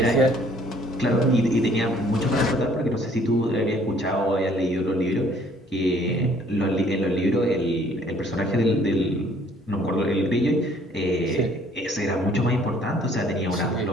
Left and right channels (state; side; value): normal; both; correlation 0.59